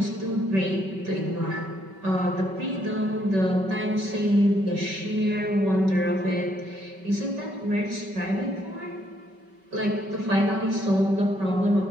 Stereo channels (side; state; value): left; late; 5.2 ms